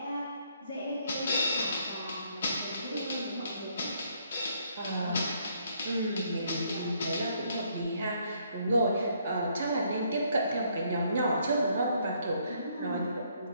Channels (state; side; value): inverted; both; correlation -0.69